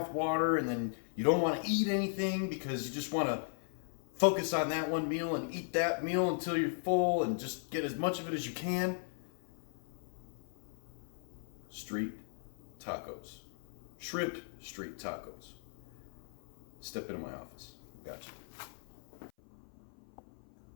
water, and then you don't want to eat anything because you just want to focus on that one meal and eat that meal until you're full and just get as much of it as you can. Street tacos. Shrimp street tacos. Step into my office. Gotcha.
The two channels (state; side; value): silent; right; 53 dB below the other